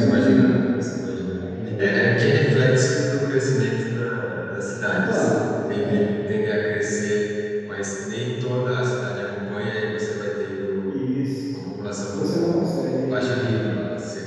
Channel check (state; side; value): identical; both; correlation 1.00